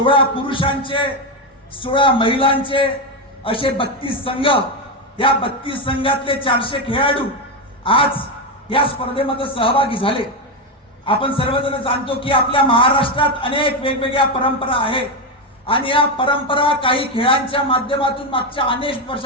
पुरुषांचे 16 महिलांचे असे 32 संघ, या 32 संघातले 400 खेळाडू आज या स्पर्धेमध्ये सहभागी झाले. आपण सर्वजण जाणतो की आपल्या महाराष्ट्रात अनेक वेगवेगळ्या परंपरा आहेत आणि या परंपरा काही खेळांच्या माध्यमातून मागच्या अनेक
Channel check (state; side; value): normal; both; correlation 0.09